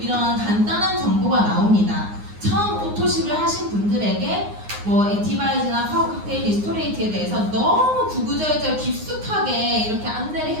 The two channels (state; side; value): late; left; 9.6 ms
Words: 간단한 정보가 나옵니다. 처음 오토십을 하신 분들에게 뭐 액티바이즈나 파워 칵테일, 리스토레이트에 대해서 너무 구구절절 깊숙하게 이렇게 안내를